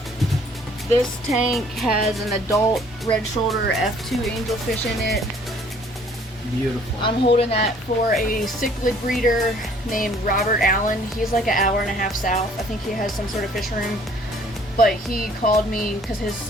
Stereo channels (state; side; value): normal; both; correlation 0.58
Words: This tank has an adult red shoulder F2 angelfish in it. Beautiful. I'm holding that for a cichlid breeder named Robert Allen. He's like an hour and a half south. I think he has some sort of fish room. But he called me because his